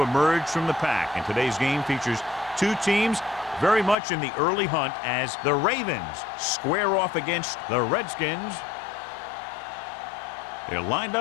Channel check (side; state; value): right; drops out; at 4.0 s